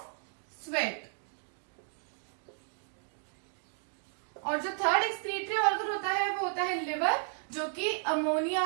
sweat. और जो थर्ड एक्सक्रीटरी ऑर्गन होता है वो होता है लिवर, जो कि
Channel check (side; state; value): left; silent; 55 dB below the other